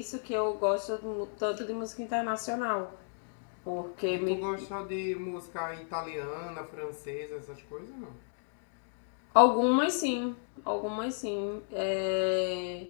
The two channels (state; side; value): silent; right; digital silence